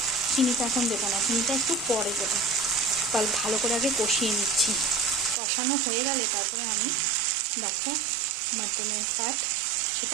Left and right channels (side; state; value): left; drops out; at 5.4 s